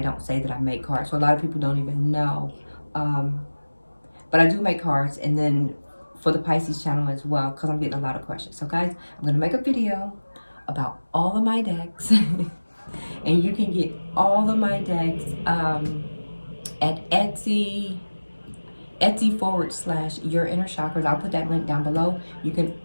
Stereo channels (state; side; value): inverted; both; correlation -1.00